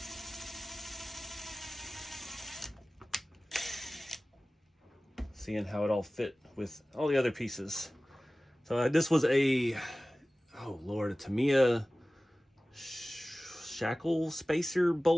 how it all fit with all the other pieces. So this was a Tamiya shackle spacer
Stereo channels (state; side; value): normal; both; correlation 0.97